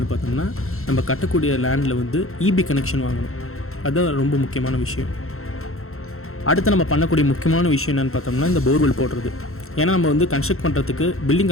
பார்த்தோம்னா நம்ம கட்டக்கூடிய லேண்டில் வந்து இபி கனெக்ஷன் வாங்கணும். அதுதான் ரொம்ப முக்கியமான விஷயம். அடுத்து நம்ம பண்ணக்கூடிய முக்கியமான விஷயம் என்னென்னு பார்த்தோம்னா இந்த போர்வெல் போடுறது. ஏன்னா நம்ம வந்து கன்ஸ்ட்ரக்ட் பண்ணுறதுக்கு பில்டிங்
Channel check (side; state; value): right; late; 0.62 ms